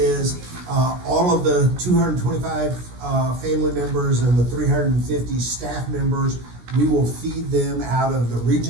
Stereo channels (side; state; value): left; late; 17 ms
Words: all of the 225, family members and the 350 staff members, we will feed them out of the